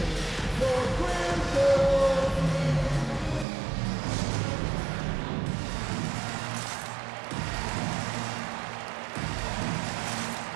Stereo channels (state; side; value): drops out; left; at 3.5 s